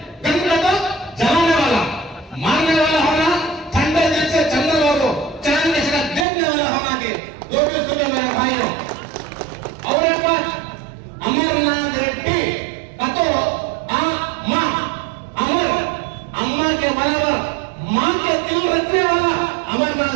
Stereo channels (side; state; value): left; drops out; at 6.2 s